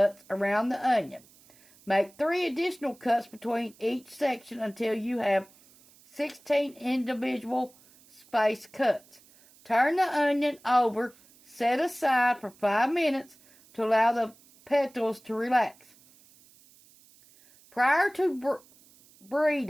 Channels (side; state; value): right; noise; hiss, 27 dB below the sound